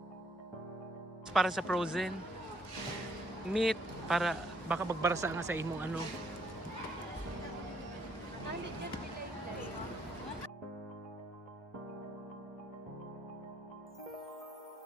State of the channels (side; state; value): both; normal; correlation 0.69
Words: Para sa frozen. Meat, para baka magbarasa nga sa imong ano.